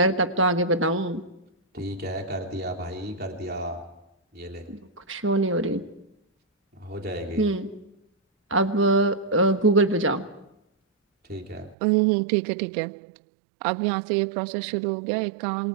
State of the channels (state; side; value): drops out; left; at 11.8 s